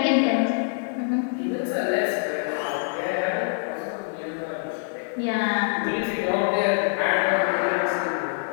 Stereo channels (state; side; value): silent; right; digital silence